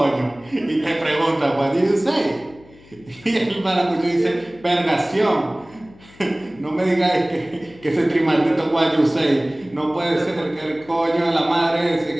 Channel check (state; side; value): noise; left; hum, 25 dB below the sound